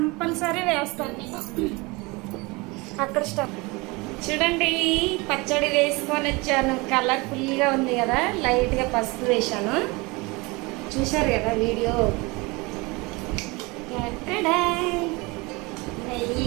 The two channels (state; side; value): quieter; left; 25.3 dB